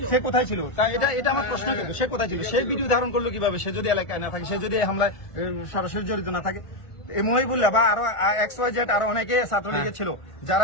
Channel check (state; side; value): late; right; 1.4 ms